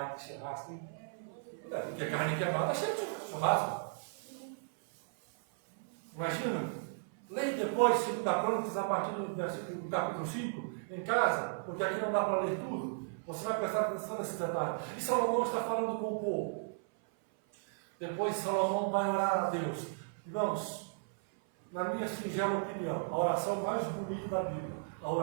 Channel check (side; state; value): left; silent; 54 dB below the other